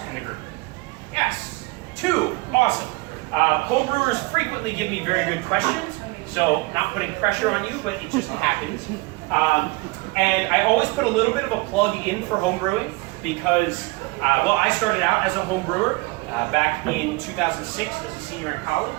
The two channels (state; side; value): quieter; left; 24.0 dB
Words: in the group? Yes, 2. Awesome. Homebrewers frequently give me very good questions, so not putting pressure on you, but it just happens. And I always put a little bit of a plug in for homebrewing because, well, I started out as a homebrewer back in 2006 as a senior in